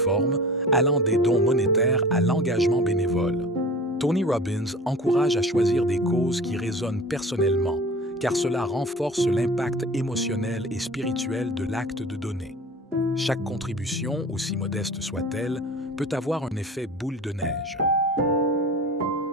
allant des dons monétaires à l'engagement bénévole. Tony Robbins encourage à choisir des causes qui résonnent personnellement, car cela renforce l'impact émotionnel et spirituel de l'acte de donner. Chaque contribution, aussi modeste soit-elle, peut avoir un effet boule de neige.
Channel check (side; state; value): both; normal; correlation 0.38